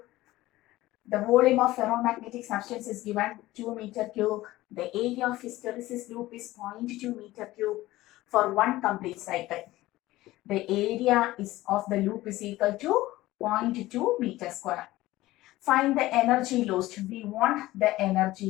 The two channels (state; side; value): quieter; right; 17.3 dB